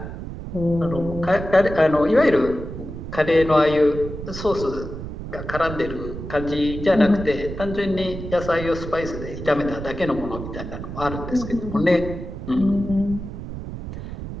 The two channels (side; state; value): right; noise; rumble, 9 dB below the sound